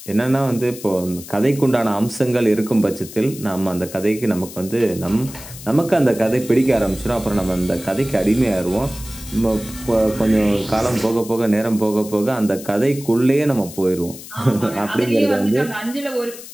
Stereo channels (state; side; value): noise; left; hiss, 15 dB below the sound